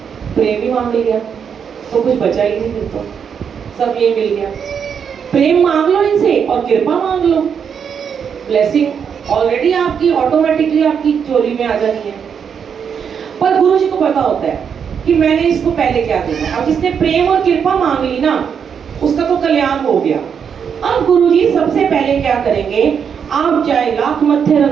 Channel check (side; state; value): left; quieter; 7.2 dB